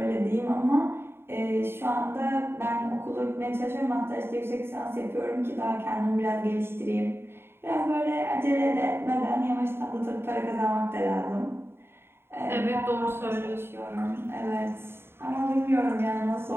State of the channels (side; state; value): left; late; 0.11 ms